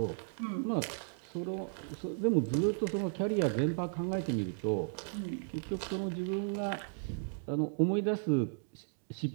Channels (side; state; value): left; silent; digital silence